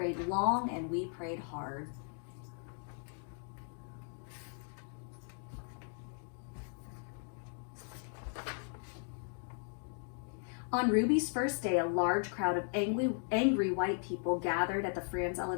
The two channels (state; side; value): silent; right; 53 dB below the other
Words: long and we prayed hard." On Ruby's first day, a large crowd of angry white people gathered at the France